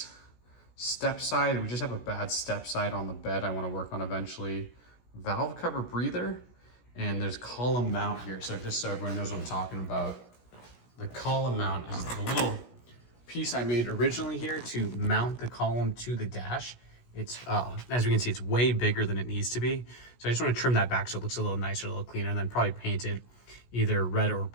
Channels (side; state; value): right; late; 16 ms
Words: Step side, we just have a bad step side on the bed I want to work on eventually. Valve cover breather, and there's column mount here. So just so everyone knows what I'm talking about, the column mount is the little piece I made originally here to mount the column to the dash. It's, as we can see, it's way bigger than it needs to be. So I just want to trim that back so it looks a little nicer, a little cleaner, and then probably paint it either red or